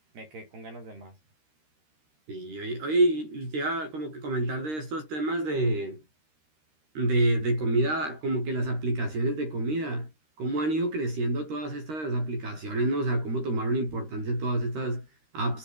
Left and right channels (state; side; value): late; left; 13 ms